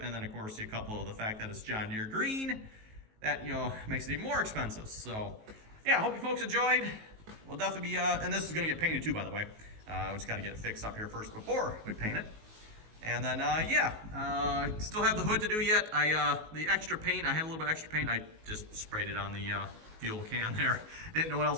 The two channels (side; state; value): left; late; 19 ms